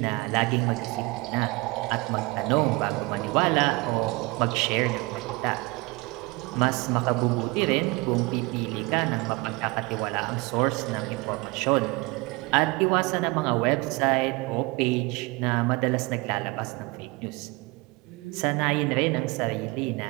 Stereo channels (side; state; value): left; quieter; 24.6 dB